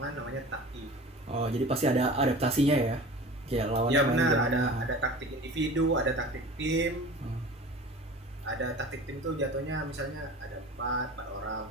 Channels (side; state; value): both; normal; correlation 0.38